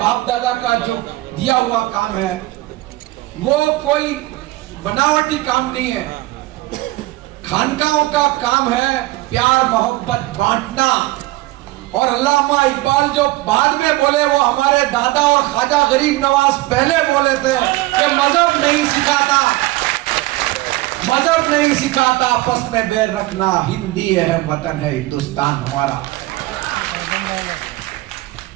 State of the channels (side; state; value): left; quieter; 19.2 dB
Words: दादा का जो दिया हुआ काम है, वो कोई बनावटी काम नहीं है। खानकाहों का काम है प्यार मोहब्बत बांटना। और अल्लामा इकबाल जो बाद में बोले, वो हमारे दादा और ख्वाजा गरीब नवाज पहले बोले थे कि मजहब नहीं सिखाता, मजहब नहीं सिखाता आपस में बैर रखना, हिंदी है वतन है हिंदुस्तान हमारा।